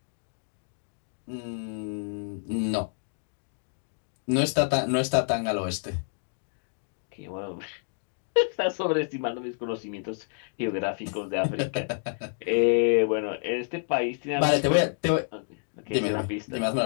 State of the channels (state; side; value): silent; right; digital silence